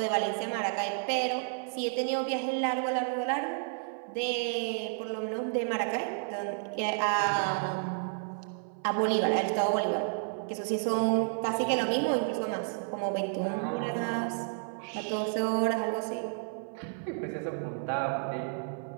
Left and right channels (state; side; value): silent; left; 55 dB below the other